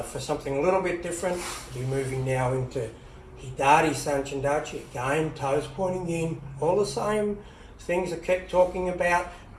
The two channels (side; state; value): both; identical; correlation 1.00